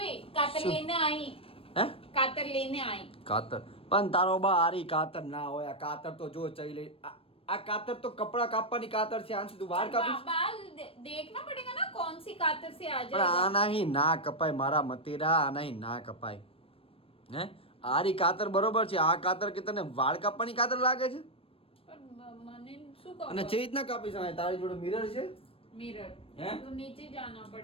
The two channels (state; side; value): late; right; 0.27 ms